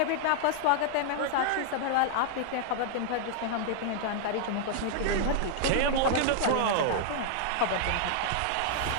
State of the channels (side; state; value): both; different; correlation -0.01